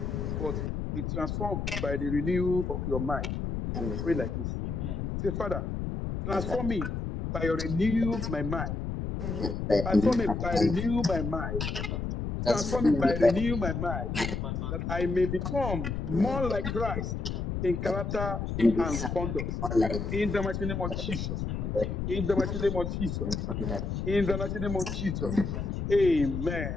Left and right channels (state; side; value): noise; left; rumble, 3 dB below the sound